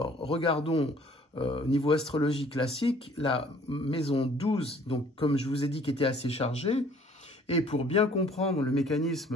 regardons au niveau astrologie classique, la maison 12, donc comme je vous ai dit, qui était assez chargée. Et pour bien comprendre le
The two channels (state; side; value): normal; both; correlation 0.56